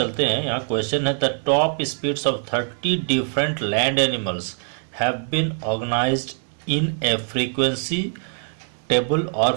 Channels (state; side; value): silent; left; 63 dB below the other